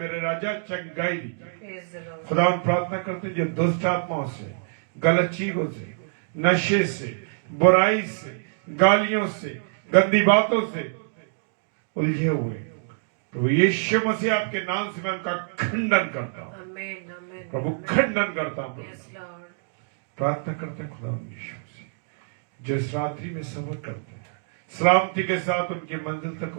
राजा चंगाई दी। खुदावन प्रार्थना करते हैं जो दुष्ट आत्माओं से, गलत चीजों से, नशे से, बुराई से, गालियों से, गंदी बातों से उलझे हुए तो यीशु मसीह आपके नाम से मैं उनका खंडन करता हूँ प्रभु, खंडन करता हूँ। प्रार्थना करते हैं खुदा यीशु मसीह जो इस रात्रि में सफर करते हैं, सलामती के साथ उनकी मंजिल तक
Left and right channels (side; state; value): left; silent; digital silence